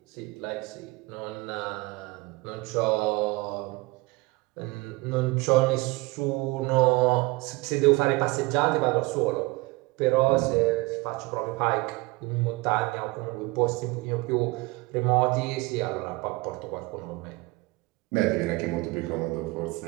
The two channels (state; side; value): quieter; left; 23.0 dB